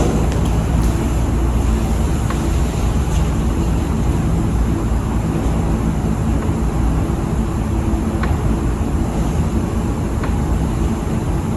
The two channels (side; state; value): both; identical; correlation 1.00